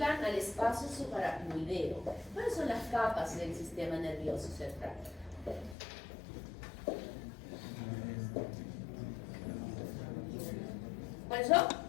al espacio subaracnoideo, ¿cuáles son las capas del sistema nervioso central? ¿Cuáles son?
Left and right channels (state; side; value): drops out; right; at 5.8 s